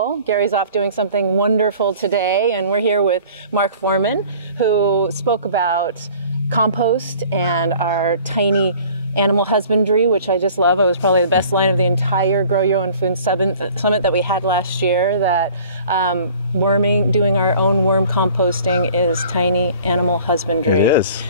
Gary's off doing something wonderful today, and we're here with Mark Foreman, who spoke about compost and our tiny animal husbandry, which I just love. It was probably the best line of the entire Grow Your Own Food Summit that we had last year, that doing our own worm composting is tiny animal husbandry. It is,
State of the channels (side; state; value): both; inverted; correlation -0.49